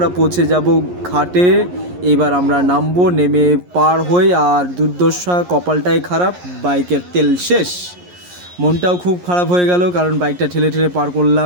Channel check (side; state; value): left; late; 11 ms